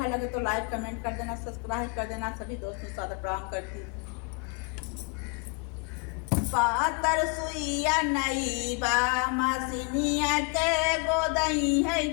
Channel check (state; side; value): quieter; right; 33.3 dB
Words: लगे तो लाइक कमेंट कर देना, सब्सक्राइब कर देना। सभी दोस्तों को सादर प्रणाम करती हूँ। पातर सुइया नई बा मसीनिया के गोदई है